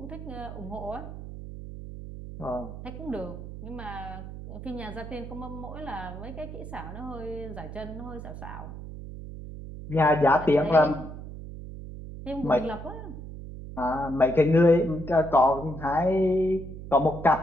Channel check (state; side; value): noise; right; hum, 11 dB below the sound